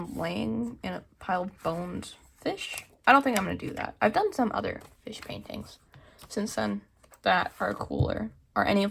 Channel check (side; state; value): both; identical; correlation 1.00